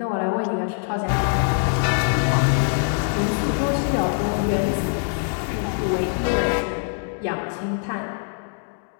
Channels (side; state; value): right; silent; 57 dB below the other